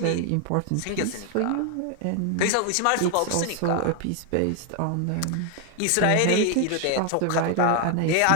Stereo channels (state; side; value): different; both; correlation 0.00